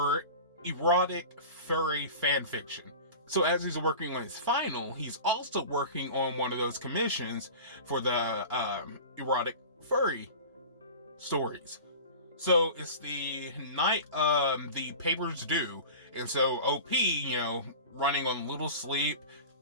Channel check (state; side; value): inverted; both; correlation -0.36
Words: erotic furry fan fiction. So as he's working on his final, he's also working on one of those commissions for the erotic furry stories. So it's the night the paper's due, and so OP, running on little sleep